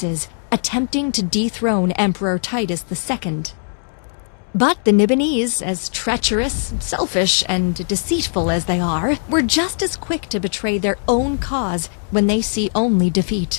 attempting to dethrone Emperor Titus II. But the Nibonese, as treacherous, selfish, and deceitful as they are, were just as quick to betray their own cause when they see only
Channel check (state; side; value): silent; right; digital silence